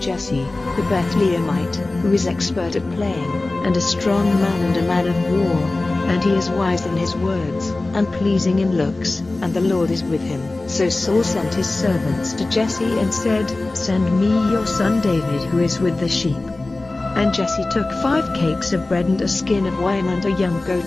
Jesse, the Bethlehemite, who is expert at playing, and a strong man and a man of war, and he is wise in his words, and pleasing in looks, and the Lord is with him. So Saul sent his servants to Jesse and said, Send me your son David who is with the sheep. And Jesse took 5 cakes of bread and a skin of wine and a young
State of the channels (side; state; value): right; quieter; 3.1 dB